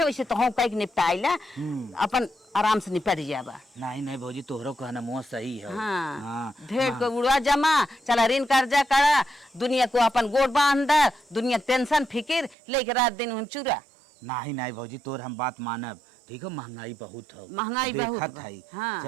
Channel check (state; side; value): drops out; left; at 12.6 s